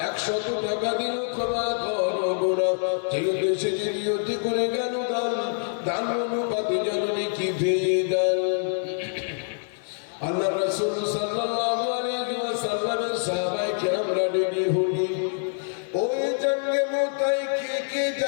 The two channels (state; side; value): silent; right; digital silence